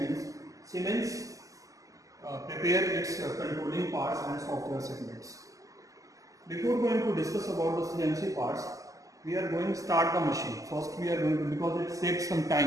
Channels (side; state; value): left; late; 0.16 ms